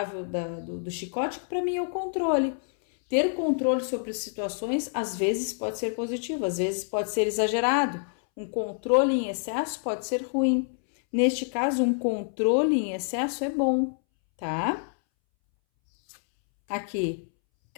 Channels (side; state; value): right; silent; 60 dB below the other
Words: do chicote, que para mim é o controle. Ter controle sobre as situações, às vezes pode ser positivo, às vezes pode ser exagerado. Um controle em excesso pode ser ruim. Neste caso, um controle em excesso é bom, tá? Aqui,